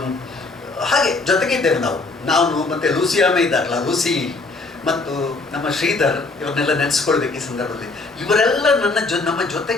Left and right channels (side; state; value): right; quieter; 3.5 dB